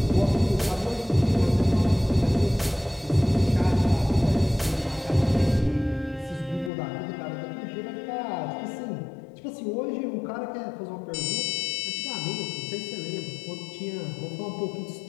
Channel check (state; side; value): drops out; right; at 6.7 s